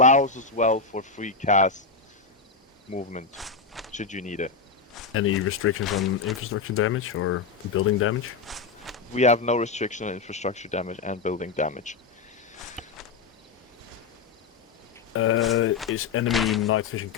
as well for free CAS movement, should you need it. Any restrictions on infrastructure damage or building damage? We have no restriction on infrastructure damage and building damage. Is enemy night vision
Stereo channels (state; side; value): quieter; right; 4.8 dB